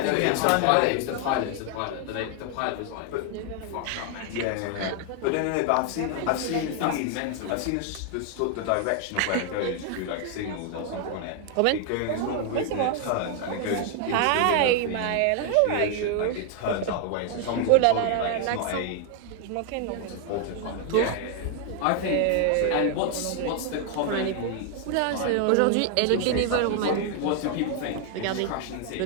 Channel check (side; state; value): both; different; correlation 0.00